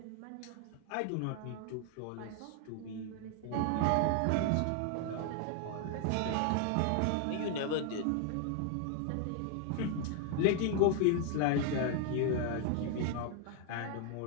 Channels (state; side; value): different; both; correlation 0.00